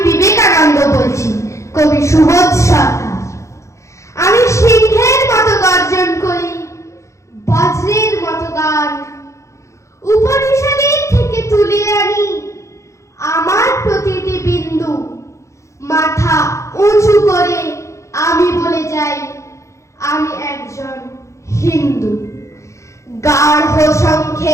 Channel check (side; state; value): right; late; 0.14 ms